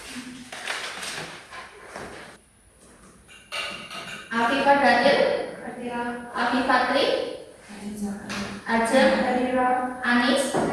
Afifah Daniel, Afifatri, Ajeng, Anis,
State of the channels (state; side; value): identical; both; correlation 1.00